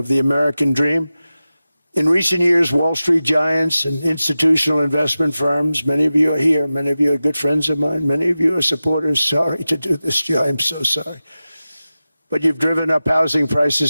the American dream. In recent years, Wall Street giants and institutional investment firms, many of you are here, many of you are good friends of mine, many of you are supporters. Sorry to do this to you, I'm so sorry. But you've driven up housing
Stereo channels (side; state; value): both; inverted; correlation -0.94